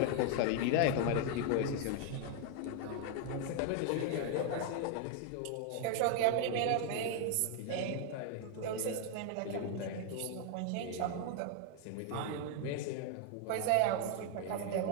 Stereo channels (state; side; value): different; both; correlation 0.00